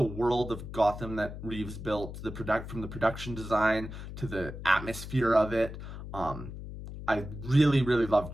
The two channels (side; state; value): left; noise; hum, 10 dB below the sound